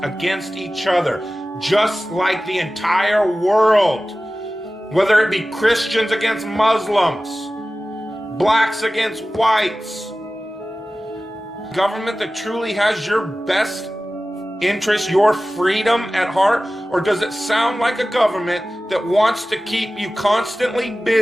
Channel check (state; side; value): normal; both; correlation 0.96